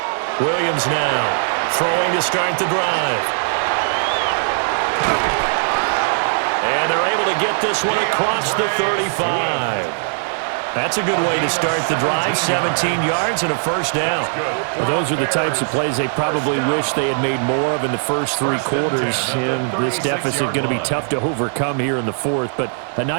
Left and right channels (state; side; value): silent; left; digital silence